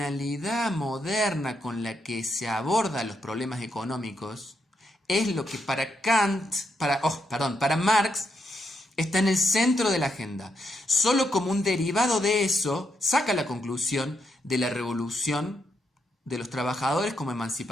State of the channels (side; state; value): both; normal; correlation 0.80